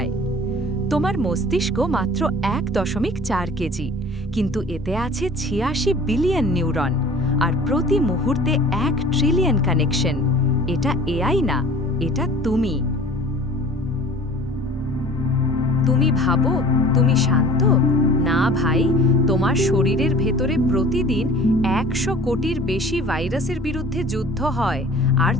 তোমার মস্তিষ্ক মাত্র ১.৪ কেজি, কিন্তু এতে আছে ৮৬ বিলিয়ন নিউরন, আর প্রতি মুহূর্তে ১ ট্রিলিয়ন কানেকশন। এটা এআই না, এটা তুমি। তুমি ভাবো তুমি শান্ত? না ভাই, তোমার শরীরের ভেতরে প্রতিদিন ১০০ কোটির বেশি ভাইরাসের বিরুদ্ধে যুদ্ধ হয়, আর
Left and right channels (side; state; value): both; normal; correlation 0.46